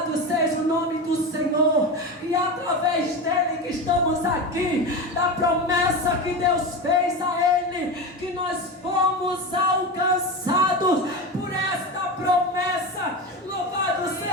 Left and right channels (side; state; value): both; normal; correlation 0.22